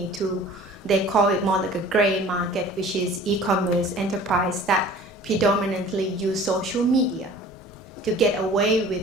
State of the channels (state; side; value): normal; both; correlation 0.46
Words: to, they call it more like a gray market, which is e-commerce enterprise that predominantly use social media to get away